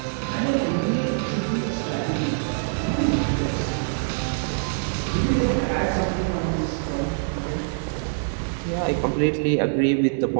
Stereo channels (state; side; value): silent; left; 58 dB below the other